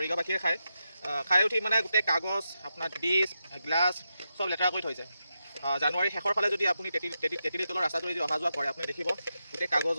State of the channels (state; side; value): inverted; both; correlation -0.87